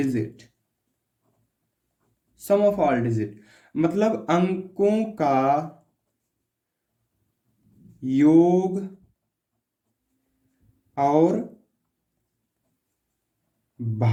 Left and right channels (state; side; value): identical; both; correlation 1.00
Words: Sum of all digit मतलब अंकों का योग और